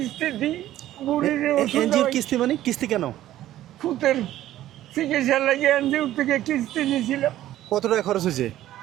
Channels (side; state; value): left; quieter; 13.6 dB